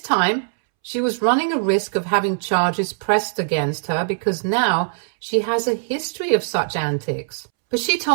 she was running a risk of having charges pressed against her because now she has a history of such antics. But she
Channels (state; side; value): silent; left; 65 dB below the other